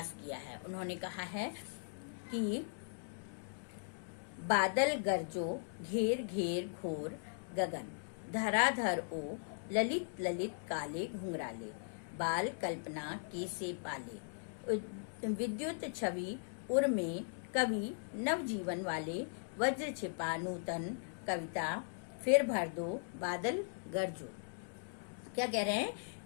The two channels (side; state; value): right; silent; digital silence